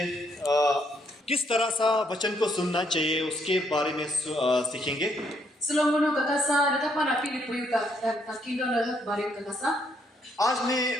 किस तरह सा वचन को सुनना चाहिए उसके बारे में सीखेंगे। आज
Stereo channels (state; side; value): normal; both; correlation 0.72